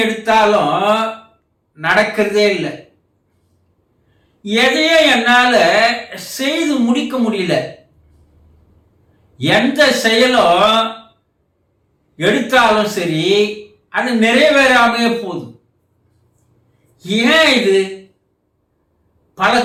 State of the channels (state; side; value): identical; both; correlation 1.00